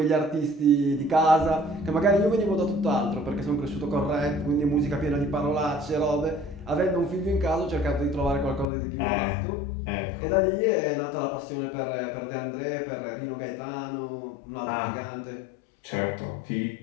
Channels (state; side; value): drops out; right; at 8.7 s